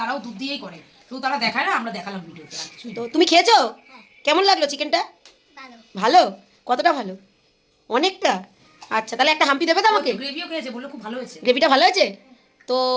দুধ দিয়েই করে, শুধু তারা দেখায় না, আমরা দেখালাম ভিডিওতে। তো তুমি খেয়েছো? কেমন লাগলো চিকেনটা? ভালো? কতটা ভালো? অনেকটা? আচ্ছা তাহলে একটা হাম্পি দেবে তো আমাকে? গ্রেভিও খেয়েছে, বললো খুব ভালো হয়েছে। গ্রেভিটা ভালো হয়েছে? তো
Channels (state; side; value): identical; both; correlation 1.00